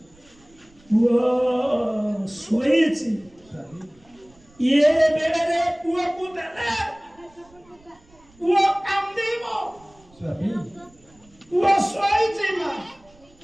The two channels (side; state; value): right; noise; rumble, 29 dB below the sound